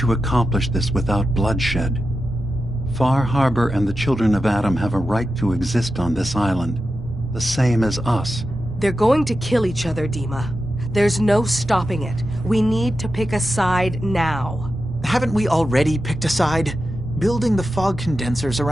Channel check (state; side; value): normal; both; correlation 0.90